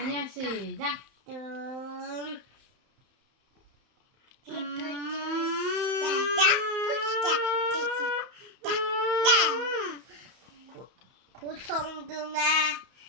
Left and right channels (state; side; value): late; left; 31 ms